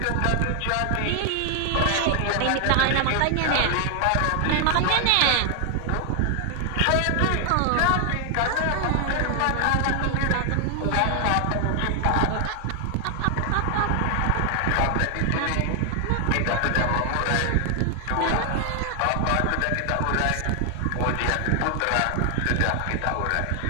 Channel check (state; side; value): different; both; correlation 0.00